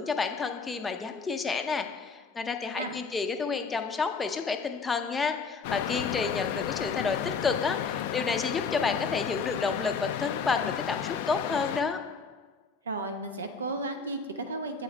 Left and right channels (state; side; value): quieter; right; 4.8 dB